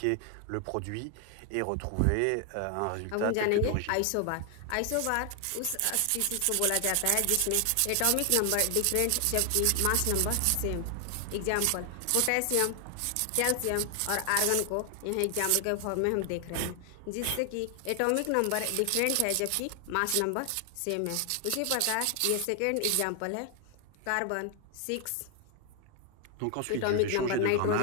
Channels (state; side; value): different; both; correlation 0.00